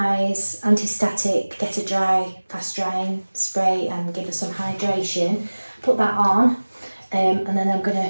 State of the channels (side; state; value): both; inverted; correlation -1.00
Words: anti-static, get a dry, fast drying spray and give her some hydration. Put that on, and then I'm going